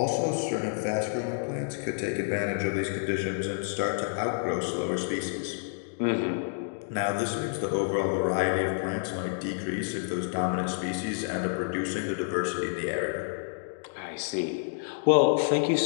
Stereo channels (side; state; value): right; silent; digital silence